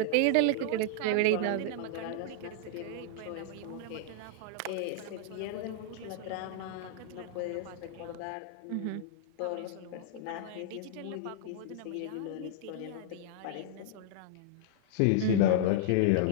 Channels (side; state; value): both; different; correlation -0.01